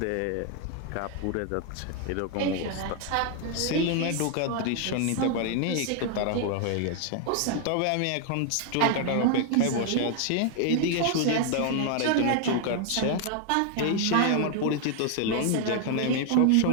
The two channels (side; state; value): both; different; correlation 0.00